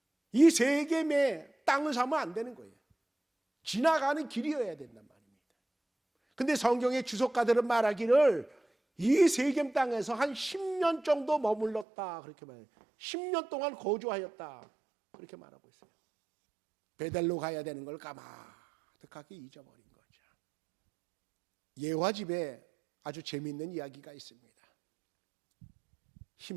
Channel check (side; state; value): left; drops out; at 11.9 s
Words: 이 세겜의 땅을 사면 안 되는 거예요. 지나가는 길이어야 된단 말입니다. 근데 성경의 주석가들은 말하기를 이 세겜 땅에서 한 10년 정도 머물렀다, 그렇게 말해요. 10년 동안 거주하였다, 그렇게 말하고 있어요. 베델로 가야 되는 걸 까마득하게 잊어버린 거죠. 예화 집에 아주 재미있는 이야기가 있습니다.